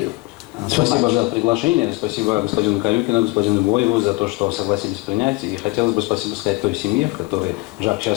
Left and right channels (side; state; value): right; quieter; 23.6 dB